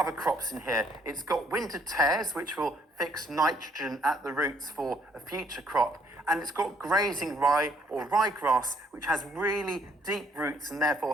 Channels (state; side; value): normal; both; correlation 0.65